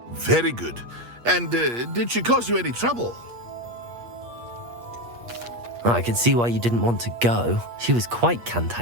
Very good. And did she cause you any trouble? I can see why you didn't want to go. She was quite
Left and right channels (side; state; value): left; late; 8.5 ms